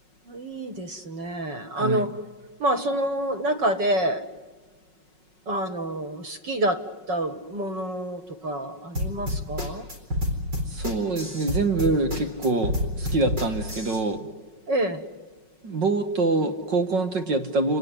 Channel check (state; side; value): late; left; 5.4 ms